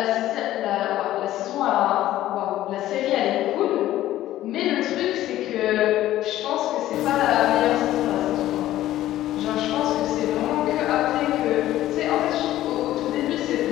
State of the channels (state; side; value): quieter; right; 14.1 dB